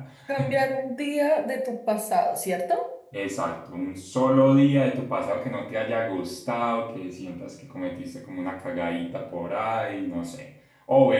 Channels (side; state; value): both; identical; correlation 1.00